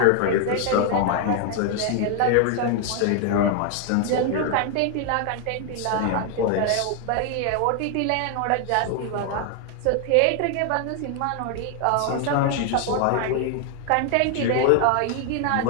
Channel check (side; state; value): both; different; correlation 0.00